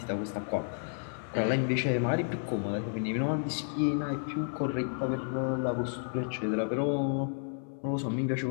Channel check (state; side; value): silent; right; 57 dB below the other